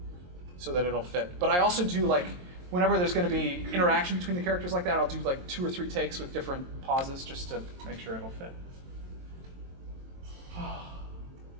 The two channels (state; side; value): late; left; 22 ms